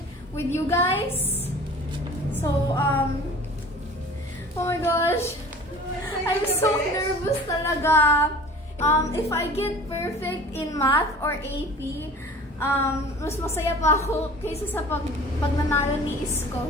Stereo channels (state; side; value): normal; both; correlation 0.43